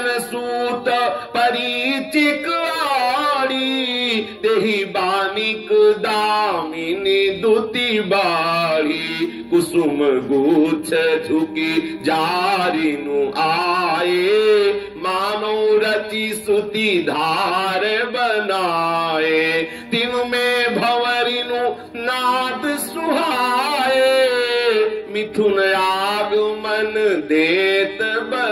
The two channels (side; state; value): both; identical; correlation 1.00